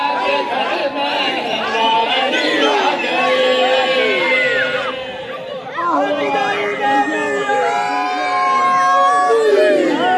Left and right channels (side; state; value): both; identical; correlation 1.00